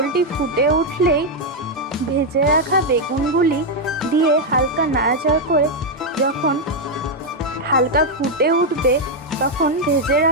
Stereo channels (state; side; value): normal; both; correlation 0.01